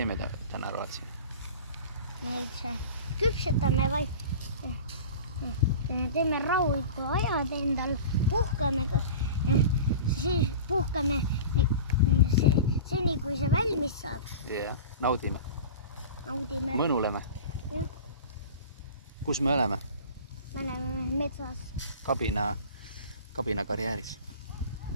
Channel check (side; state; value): both; inverted; correlation -0.35